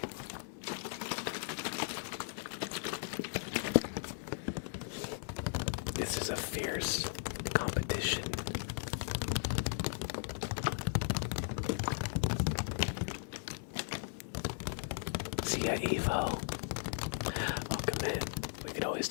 This is a fierce competition. See ya, Evo. Welcome in. We could always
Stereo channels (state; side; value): silent; right; digital silence